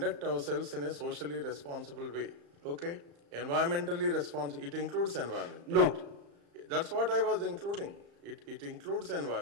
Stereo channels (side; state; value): left; late; 35 ms